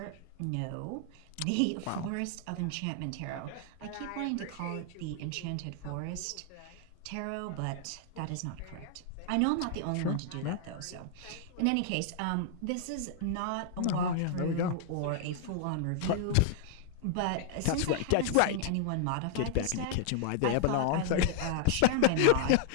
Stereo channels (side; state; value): both; different; correlation -0.01